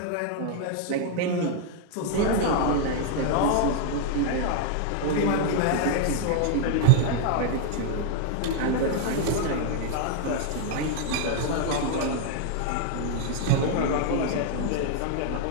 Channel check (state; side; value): different; both; correlation 0.00